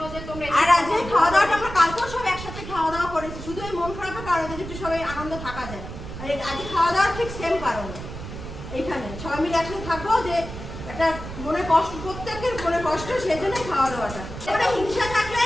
যে তোমরা আর আজ এই খাওয়া দাওয়াটা আমরা কালকেও সব একসাথে খাওয়া দাওয়া করেছি, শুধু এই মন খারাপের কারণে যে একটু সবাই আনন্দ থাকা যায়। আর আজ খাওয়া দাওয়ার ঠিক সেম কারণে এইখানে সবাই মিলে একসাথে থাকবো, যে একটা মনে কষ্ট, প্রত্যেকের মনে কষ্ট, সেই জন্যই খাওয়া দাওয়াটা। এবারে হিংসা থাকলে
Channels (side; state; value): right; noise; rumble, 10 dB below the sound